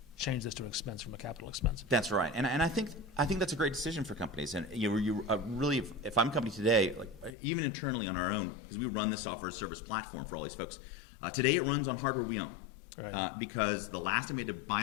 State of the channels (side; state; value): right; drops out; at 7.4 s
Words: change this to an expense from a capital expense? That's right, and I think that's a great decision for companies. And you really, if I'm a company today, like even internally on our own, because we run this software as a service platform for all these folks. Today it runs on hardware we own. Right. Because the last time we had to